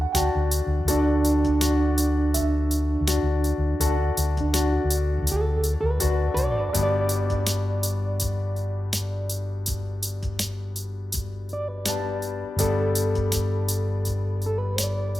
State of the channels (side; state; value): both; normal; correlation 0.93